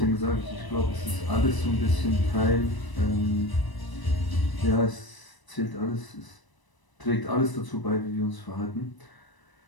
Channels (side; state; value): right; late; 1.0 ms